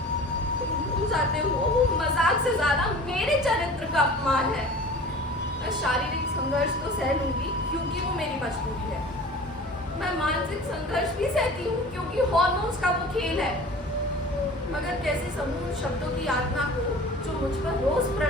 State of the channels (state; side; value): normal; both; correlation 0.42